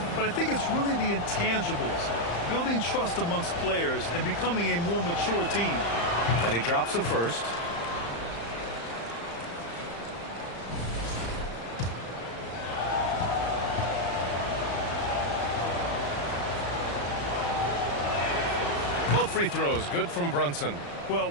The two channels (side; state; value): right; late; 35 ms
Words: But I think it's really the intangibles, building trust amongst players and becoming a more mature team. And he drops the first. Both free throws, good from Brunson. Well,